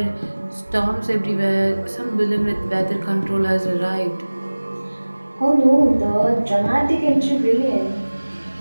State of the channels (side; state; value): both; inverted; correlation -1.00